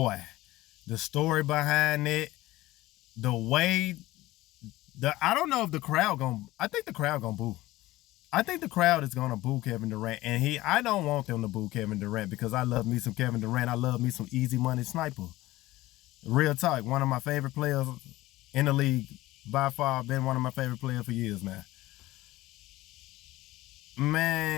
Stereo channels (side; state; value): right; quieter; 17.6 dB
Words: the story behind it, the way I don't know if the crowd I think the crowd gonna boo. I think the crowd is gonna boo Kevin Durant, and I don't want them to boo Kevin Durant because I love me some Kevin Durant. I love me some easy money sniper. Real talk, one of my favorite players in the league, by far, been one of my favorite players for years now.